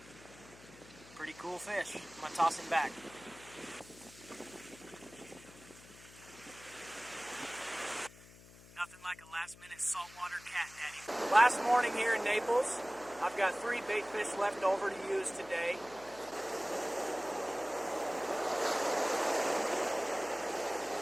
Pretty cool fish. I'm going to toss him back. Nothing like a last-minute saltwater cat daddy. Last morning here in Naples, I've got 3 bait fish left over to use today.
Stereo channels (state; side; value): noise; left; hum, 21 dB below the sound